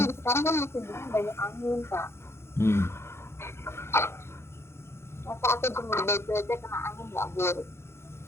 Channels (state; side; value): late; right; 0.12 ms